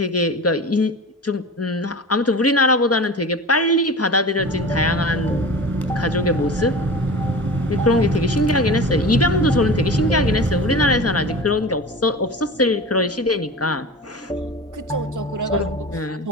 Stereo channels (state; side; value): normal; both; correlation 0.33